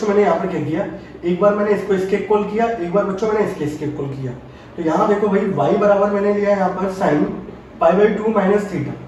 मैंने यहाँ पर क्या किया, एक बार मैंने इसको इसके इक्वल किया, एक बार बच्चों मैंने इसके इक्वल किया। तो यहाँ देखो भाई y बराबर मैंने लिया यहाँ पर sine pi by 2 minus theta.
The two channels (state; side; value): identical; both; correlation 1.00